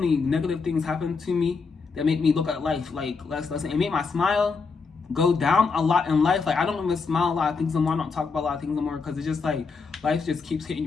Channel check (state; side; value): quieter; right; 4.8 dB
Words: negative things happen to me that make me look at life like less. It made my smile go down a lot in life. Like, I don't even smile a lot of things anymore. I don't talk about a lot of things anymore, because it's just like life just keeps hitting